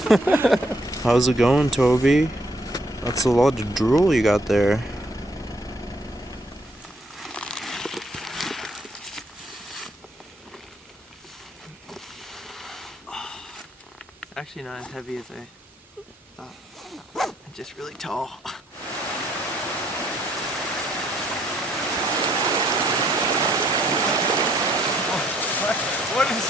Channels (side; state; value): both; normal; correlation 0.68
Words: How's it going, Toby? That's a lot of drool you got there. Actually not as heavy as I thought. I'm just really tall. What